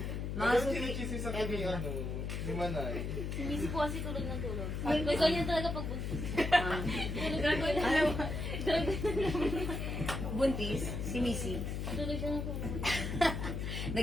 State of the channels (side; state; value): left; noise; hum, 3 dB below the sound